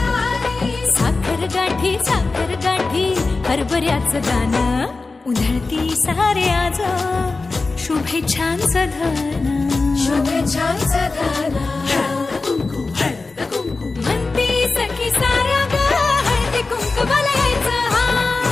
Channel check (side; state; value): right; quieter; 3.7 dB